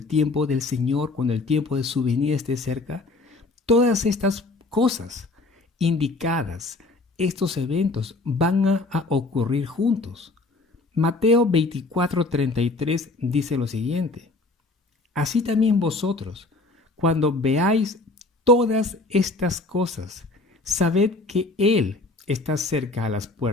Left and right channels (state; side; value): quieter; right; 3.3 dB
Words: tiempo del Señor, cuando el tiempo de su venida esté cerca, todas estas cosas indicadas, estos eventos van a ocurrir juntos. Mateo 24:33 dice lo siguiente: así también vosotros, cuando veáis todas estas cosas, sabed que Él está cerca a las